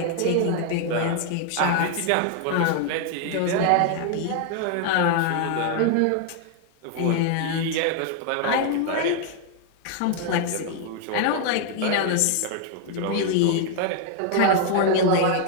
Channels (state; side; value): different; both; correlation 0.00